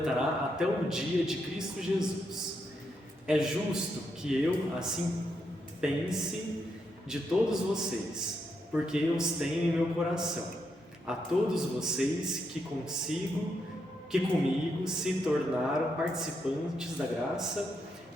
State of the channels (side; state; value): both; normal; correlation 0.80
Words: até o dia de Cristo Jesus. É justo que eu assim pense de todos vocês, porque eu os tenho em meu coração. A todos vocês que comigo se tornaram participantes da graça